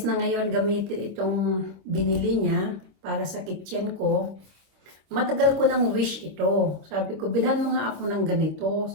na ngayon gamitin itong binili niya para sa kitchen ko, matagal ko nang wish ito. Sabi ko, bilhan mo nga ako ng ganito.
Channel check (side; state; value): left; late; 26 ms